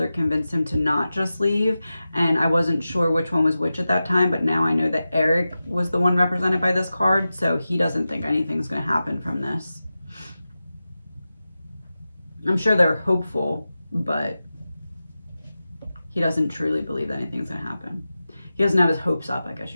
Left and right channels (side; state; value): both; inverted; correlation -0.93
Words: convinced him to not just leave. And I wasn't sure which one was which at that time, but now I know that Eric was the one represented by this card, so he doesn't think anything's going to happen from this. I'm sure they're hopeful, but he doesn't truly believe that anything's going to happen. He doesn't have his hopes up, I guess